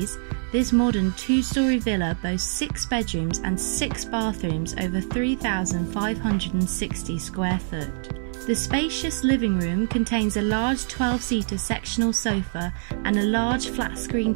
This modern two-storey villa boasts 6 bedrooms and 6 bathrooms over 3,560 square foot. The spacious living room contains a large 12-seater sectional sofa and a large flat-screen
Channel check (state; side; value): silent; left; 58 dB below the other